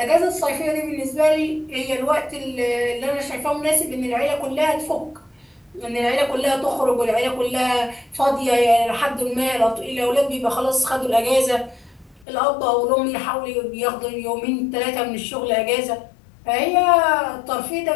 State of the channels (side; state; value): right; drops out; at 12.2 s